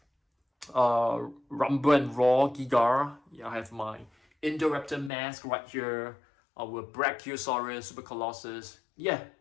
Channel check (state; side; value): drops out; right; at 5.1 s